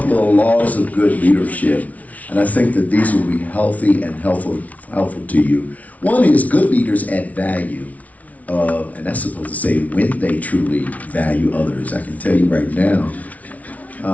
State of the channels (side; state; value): right; late; 0.070 ms